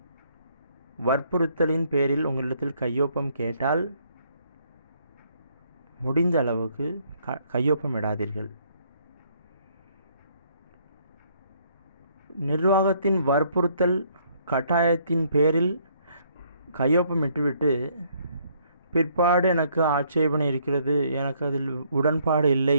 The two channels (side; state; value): both; inverted; correlation -0.67